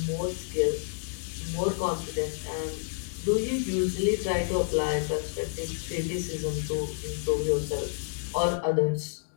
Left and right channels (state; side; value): silent; right; digital silence